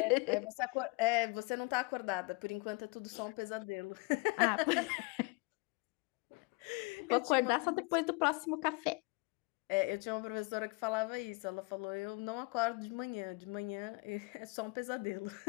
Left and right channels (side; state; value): right; quieter; 27.7 dB